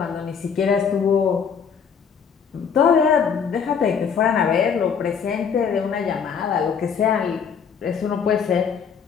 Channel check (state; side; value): quieter; right; 6.8 dB